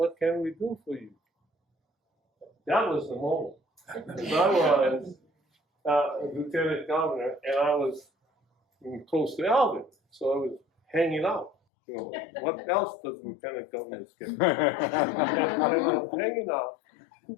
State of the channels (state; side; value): drops out; right; at 11.5 s